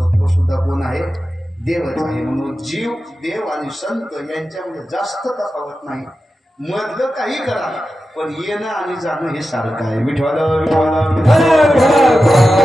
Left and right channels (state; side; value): normal; both; correlation 0.92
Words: तो सुद्धा कोण आहे? देवच आहे. म्हणून जीव देव आणि संत यांच्यामध्ये जास्त तफावत नाही. मधलं काही करा पण येणं आणि जाणं हे सारखं आहे. विठ्ठल